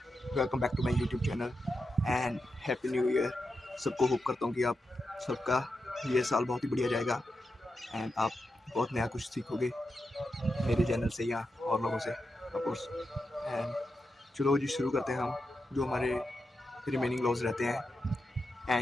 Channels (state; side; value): normal; both; correlation 0.88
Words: welcome back to my YouTube channel and happy new year. सबको hope करता हूँ कि आप सबका ये साल बहुत ही बढ़िया जाएगा एंड आप बहुत नया कुछ सीखोगे मेरे चैनल से या और लोगों से ऑफ कोर्स। एंड चलो जी शुरू करते हैं हम जो हमारे रिमेनिंग लॉज रहते हैं।